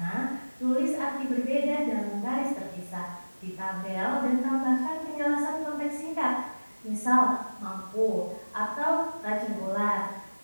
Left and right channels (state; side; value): inverted; both; correlation -1.00